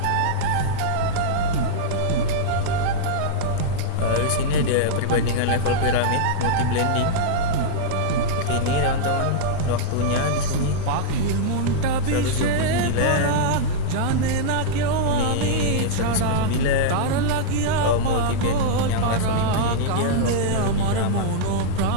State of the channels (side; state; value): both; different; correlation -0.02